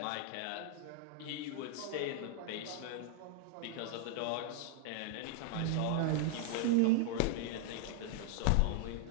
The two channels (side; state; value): both; different; correlation 0.00